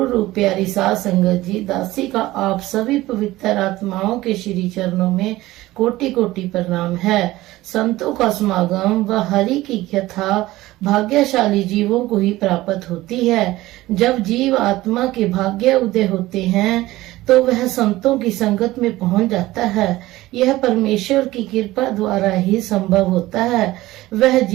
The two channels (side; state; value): left; quieter; 17.4 dB